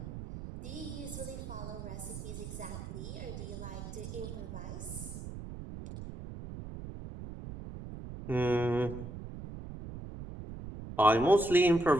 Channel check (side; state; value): right; noise; rumble, 9 dB below the sound